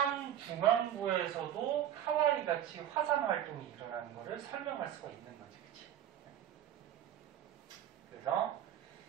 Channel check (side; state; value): left; quieter; 10.9 dB